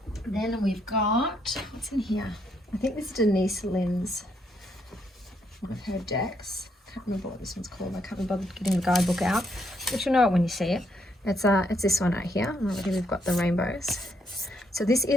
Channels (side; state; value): both; normal; correlation 0.75